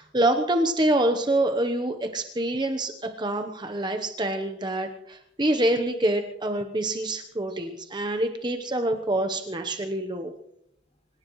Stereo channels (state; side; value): normal; both; correlation 0.58